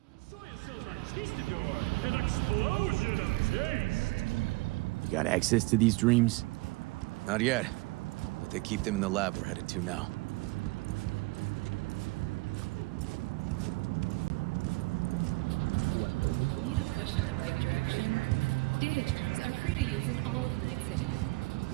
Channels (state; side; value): quieter; left; 24.2 dB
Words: An explosion of taste! You got access to these dreams? Not yet, but they keep them in the lab we're headed to now.